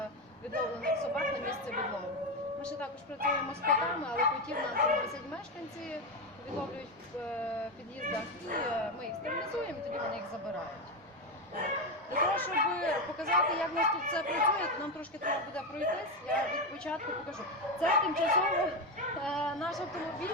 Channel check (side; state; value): both; normal; correlation 0.12